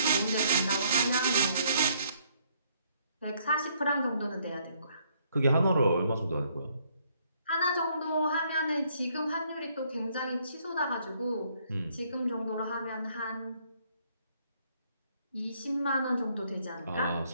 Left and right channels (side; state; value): both; inverted; correlation -0.68